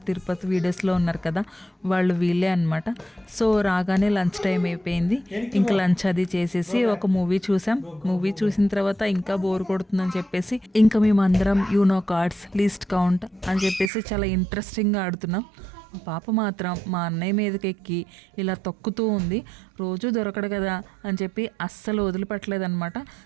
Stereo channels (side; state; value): left; drops out; at 13.9 s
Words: తిరుపతి వీడియోస్లో ఉన్నారు కదా, వాళ్ళు వీళ్ళే అనమాట. సో రాగానే లంచ్ టైం అయిపోయింది. ఇంకా లంచ్ అది చేసేసి ఒక మూవీ చూసాం. మూవీ చూసిన తర్వాత ఇంకా బోర్ కొడుతుందని చెప్పేసి ఇంకా మేమందరం యూనో కార్డ్స్ లీస్ట్ కౌంట్ అని చెప్పేసి చాలా ఇంట్రెస్టింగ్గా ఆడుతున్నాం. మా పాప మాత్రం మా అన్నయ్య మీదకి ఎక్కి ఇలా తొక్కుతూ ఉంది. రోజు దొరకడు కదా అని చెప్పి అస్సలు వదిలిపెట్టలేదన్నమాట.